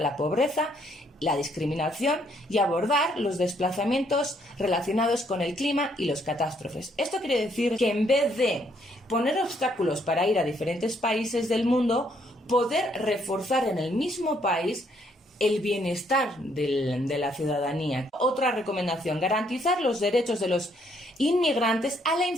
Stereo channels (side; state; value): both; normal; correlation 0.69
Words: la pobreza, la discriminación y abordar los desplazamientos relacionados con el clima y las catástrofes. Esto quiere decir que en vez de poner obstáculos para ir a diferentes países del mundo, poder reforzar en el mismo país el bienestar de la ciudadanía. Otra recomendación, garantizar los derechos de los inmigrantes a la